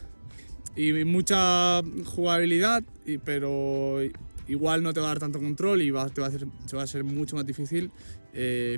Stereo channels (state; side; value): inverted; both; correlation -1.00